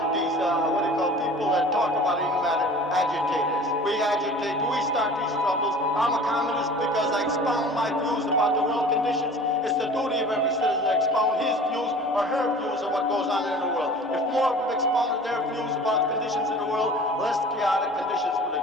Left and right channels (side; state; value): both; normal; correlation 0.43